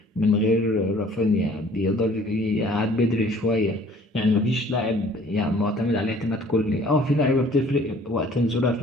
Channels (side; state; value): both; normal; correlation 0.54